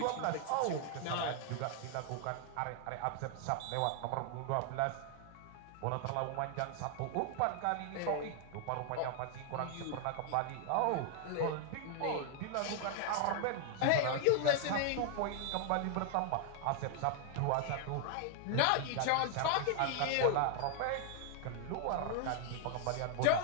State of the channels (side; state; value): both; different; correlation 0.00